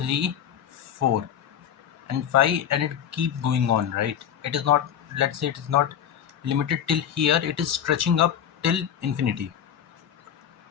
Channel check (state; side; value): quieter; right; 9.3 dB